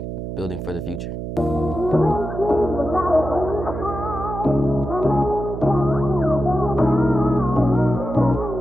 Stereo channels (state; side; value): noise; right; hum, 6 dB below the sound